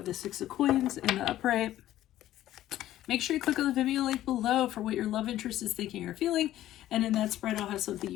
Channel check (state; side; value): quieter; right; 13.6 dB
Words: the Six of Coins in the upright. Make sure you click on the Venmo link below for what your love interest is thinking or feeling. And in that spread, I'll have something